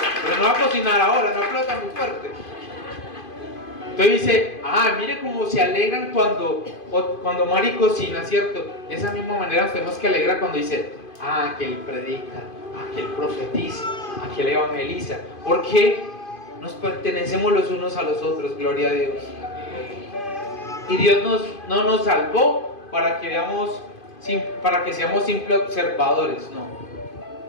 no va a cocinar ahora, no aplauda muy fuerte. Entonces dice, mire cómo se alegran cuando Mari cocina, ¿cierto? De esa misma manera nos tenemos que alegrar cuando dice, que él predica, que él profetiza, que él evangeliza. Porque nos pertenecemos los unos a los otros, gloria a Dios. Y Dios no nos salvó para que seamos simples observadores, no.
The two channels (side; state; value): right; late; 2.5 ms